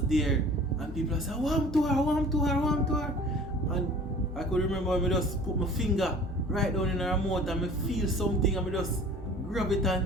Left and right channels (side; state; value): both; normal; correlation 0.46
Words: there and people said, warm to her. And I could remember me just put my finger right down in her mouth and me feel something and me just grab it